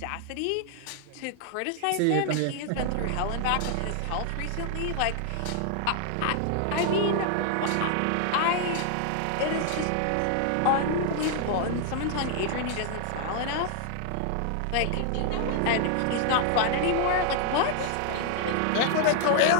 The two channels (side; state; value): both; different; correlation 0.00